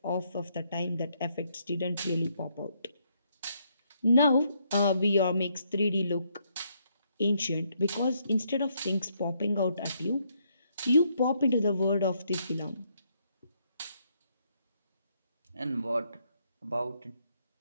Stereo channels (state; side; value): inverted; both; correlation -0.73